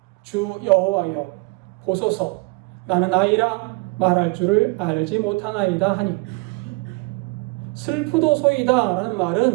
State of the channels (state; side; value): quieter; left; 28.5 dB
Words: 주 여호와여 보소서, 나는 아이라 말할 줄을 알지 못하나이다 하니. 슬프도소이다 라는